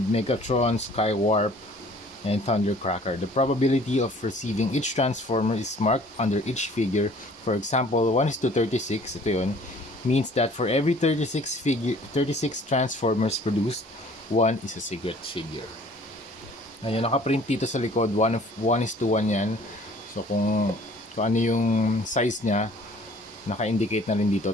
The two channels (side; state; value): both; normal; correlation 0.53